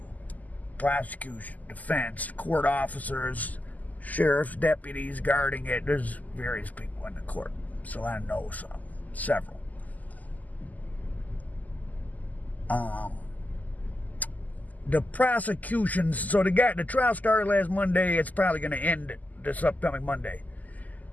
prosecution, defense, court officers, sheriff's deputies guarding it. There's various people in the court, so I know several. The prosecution, so the trial started last Monday. It's probably going to end this upcoming Monday.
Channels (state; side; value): late; right; 0.079 ms